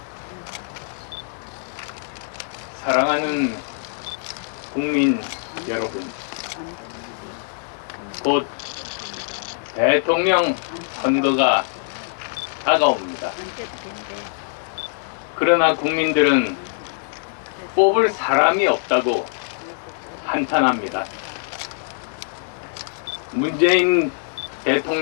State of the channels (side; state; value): right; silent; digital silence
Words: 사랑하는 국민 여러분, 곧 대통령 선거가 다가옵니다. 그러나 국민들은 뽑을 사람이 없다고 한탄합니다. 문재인